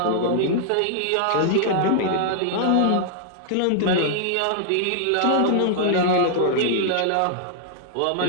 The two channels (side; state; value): both; different; correlation -0.01